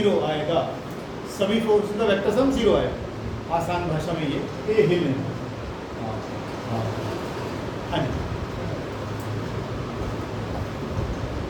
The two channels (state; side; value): identical; both; correlation 1.00